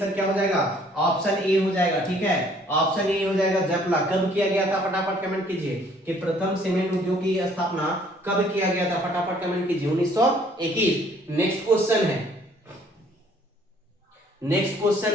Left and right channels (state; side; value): normal; both; correlation 0.60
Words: क्या हो जाएगा? ऑप्शन ए हो जाएगा। ठीक है, ऑप्शन ए हो जाएगा जपला। कब किया गया था? फटाफट कमेंट कीजिए कि प्रथम सीमेंट उद्योग की स्थापना कब किया गया था? फटाफट कमेंट कीजिए। 1921। नेक्स्ट क्वेश्चन